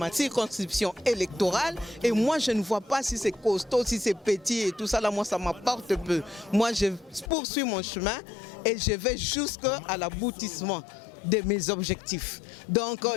circonscription électorale et moi je ne vois pas si c'est costaud, si c'est petit et tout ça, là moi ça m'apporte peu. Moi je poursuis mon chemin et je vais jusqu'à l'aboutissement de mes objectifs. Donc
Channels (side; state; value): right; drops out; at 7.3 s